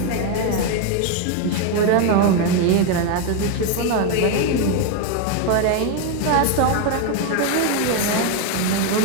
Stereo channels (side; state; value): both; different; correlation 0.02